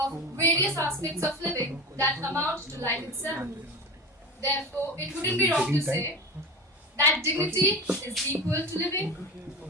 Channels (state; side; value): normal; both; correlation 0.27